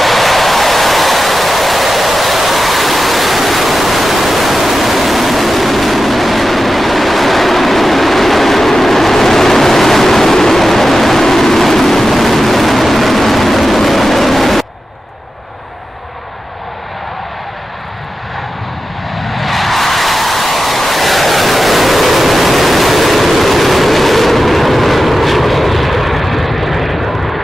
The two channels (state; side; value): normal; both; correlation 0.92